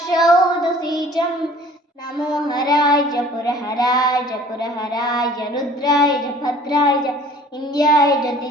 नमो हराय च पुरहराय रुद्राय च भद्राय च इन्द्राय च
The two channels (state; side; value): normal; both; correlation 0.50